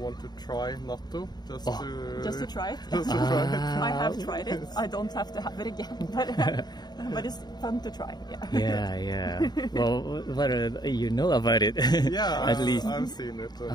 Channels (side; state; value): right; late; 0.20 ms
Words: to try natto, just to try it. I have tried it. I don't have to have it again, but it's fun to try. Yeah. Well, what you know about it? At least I've seen it.